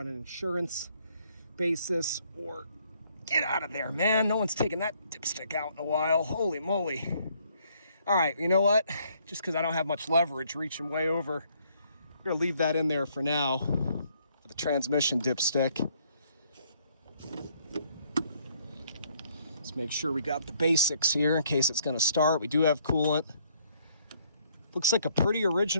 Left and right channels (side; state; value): both; inverted; correlation -0.66